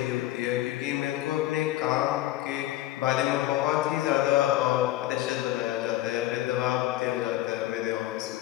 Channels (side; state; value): right; quieter; 15.1 dB